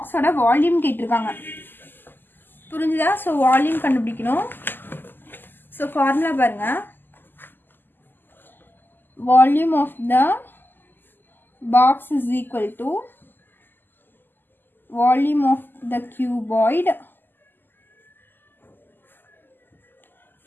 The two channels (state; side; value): late; right; 0.093 ms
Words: வால்யூம் கேட்டிருக்காங்க. புரிஞ்சுதா? ஸோ வால்யூம் கண்டுபிடிக்கணும். ஸோ ஃபார்முலா பாருங்கள். Volume of the box is equal to volume of the cuboid